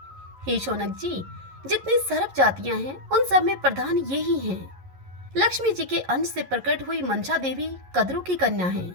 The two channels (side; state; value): left; late; 11 ms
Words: हे शौनक जी, जितनी सर्प जातियां हैं, उन सब में प्रधान ये ही हैं। लक्ष्मी जी के अंश से प्रकट हुई मंसा देवी कद्रु की कन्या है।